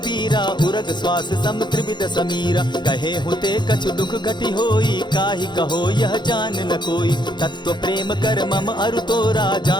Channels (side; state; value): right; late; 0.22 ms